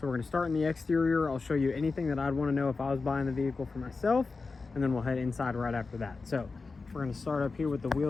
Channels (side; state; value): right; quieter; 4.2 dB